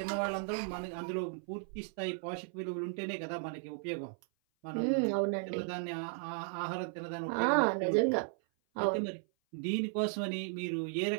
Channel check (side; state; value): left; silent; 54 dB below the other